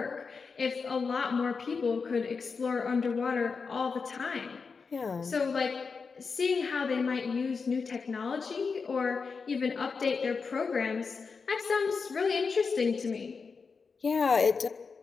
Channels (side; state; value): right; quieter; 5.1 dB